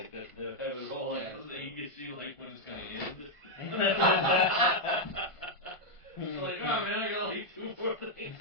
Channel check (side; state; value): right; late; 1.5 ms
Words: all, like, so that you could see, like, when it's going to end. It's like, oh, man, I got, like, 2 more things.